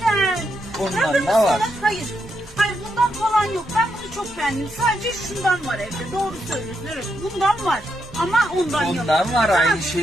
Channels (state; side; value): normal; both; correlation 0.81